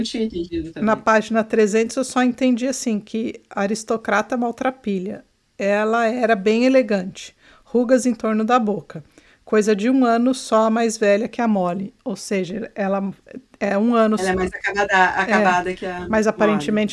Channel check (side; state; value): both; identical; correlation 1.00